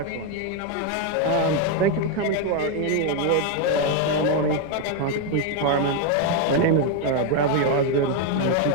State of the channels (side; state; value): both; different; correlation 0.01